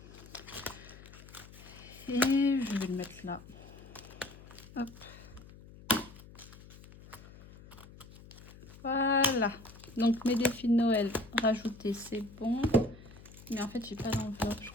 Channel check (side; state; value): left; noise; hum, 19 dB below the sound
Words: Et je vais le mettre là. Hop. Voilà. Donc mes défis de Noël rajoutés, c'est bon. Mais en fait, j'ai pas d'enveloppe, je